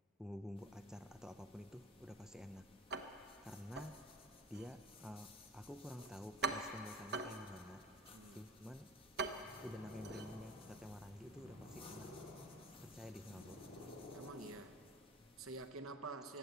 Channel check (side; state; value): both; normal; correlation 0.39